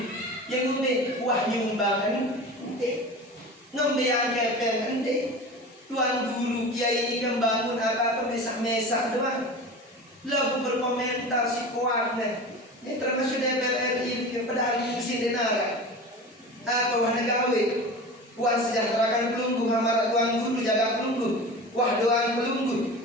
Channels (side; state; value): both; normal; correlation 0.33